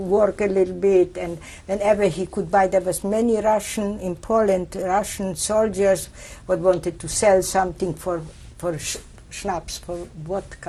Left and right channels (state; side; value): identical; both; correlation 1.00